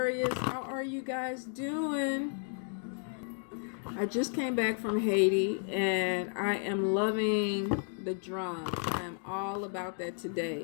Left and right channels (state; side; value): silent; right; 56 dB below the other